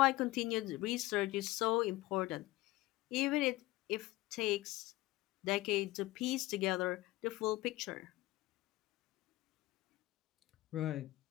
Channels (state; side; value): quieter; right; 18.5 dB